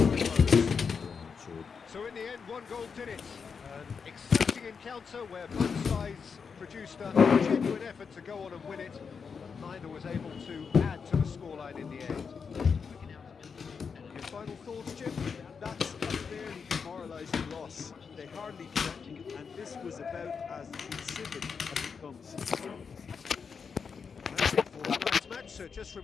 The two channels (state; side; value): quieter; right; 5.9 dB